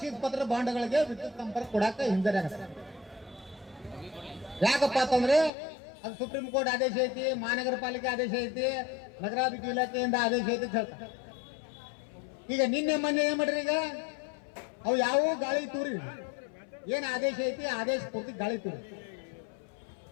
ಪತ್ರ ಬಾಂಡ್ಗಳಿಗೆ ವಿದ್ಯುತ್ ಸಂಪರ್ಕ ಕೊಡಾಕ ಹಿಂಜರಿಯಾಗತ್ತೆ. ಯಾಕಪ್ಪ ಅಂತಂದ್ರೆ ಅದು ಸುಪ್ರೀಂ ಕೋರ್ಟ್ ಆದೇಶ ಐತಿ, ಮಹಾನಗರ ಪಾಲಿಕೆ ಆದೇಶ ಐತಿ, ನಗರಾಭಿವೃದ್ಧಿ ಇಲಾಖೆಯಿಂದ ಆದೇಶ ಐತಿ ಅಂತ ಹೇಳ್ತಾರೆ. ಈಗ ನಿನ್ನೆ ಮೊನ್ನೆ ಏನ್ ಮಾಡ್ರಿ, ಈಗ ಅವು ಯಾವ ಗಾಳಿ ತೂರಿ, ಏನ್ ಆದೇಶ ಐತಿ ಆದೇಶ ಪೂರ್ತಿ ಗಾಳಿ ತೂರಿ.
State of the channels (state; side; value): drops out; right; at 5.5 s